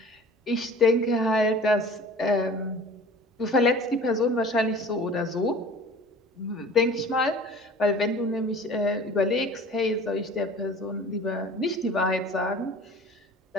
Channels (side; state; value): both; normal; correlation 0.44